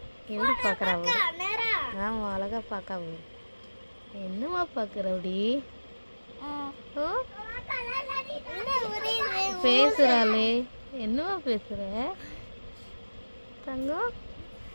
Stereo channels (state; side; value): inverted; both; correlation -1.00